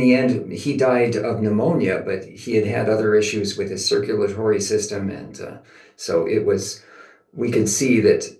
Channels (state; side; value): identical; both; correlation 1.00